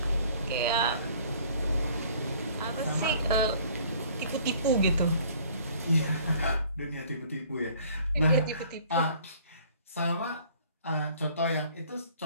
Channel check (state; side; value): inverted; both; correlation -0.55